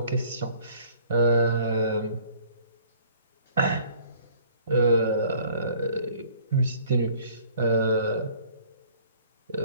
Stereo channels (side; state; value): both; inverted; correlation -0.55